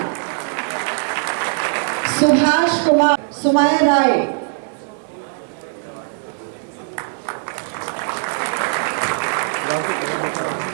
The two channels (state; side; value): silent; left; digital silence